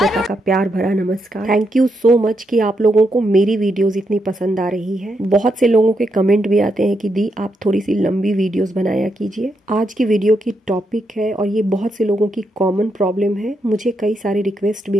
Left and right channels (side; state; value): both; normal; correlation 0.81